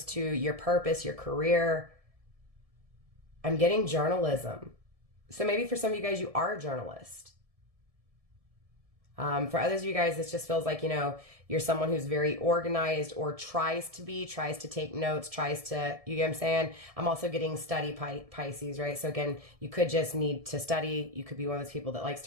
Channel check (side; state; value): left; late; 1.7 ms